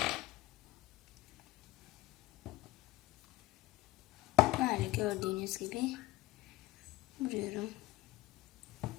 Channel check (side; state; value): right; quieter; 17.7 dB